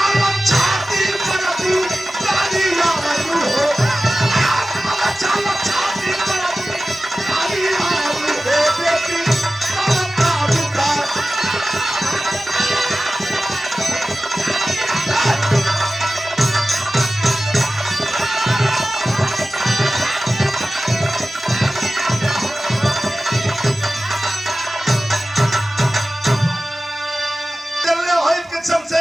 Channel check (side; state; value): both; normal; correlation 0.95